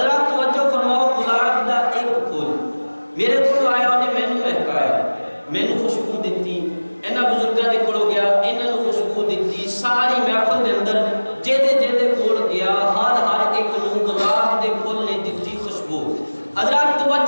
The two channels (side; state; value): both; inverted; correlation -1.00